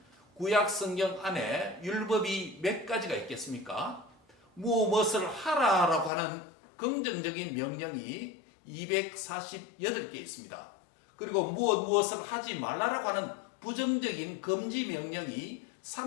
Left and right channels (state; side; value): drops out; right; at 6.1 s